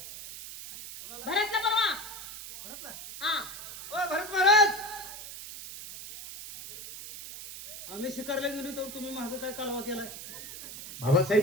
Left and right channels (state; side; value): noise; right; hiss, 11 dB below the sound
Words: भरतला बोलवा. भरतला. हा. ओ भरत महाराज, आम्ही शिकारला गेलो तर तुम्ही मागं काय कालवा केलाय? बाबासाहेब